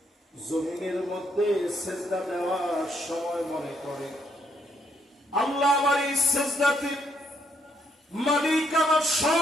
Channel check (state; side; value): normal; both; correlation 0.73